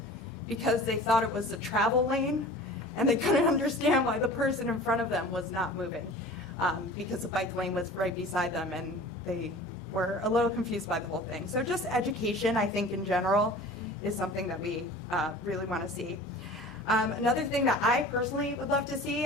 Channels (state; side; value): normal; both; correlation 0.41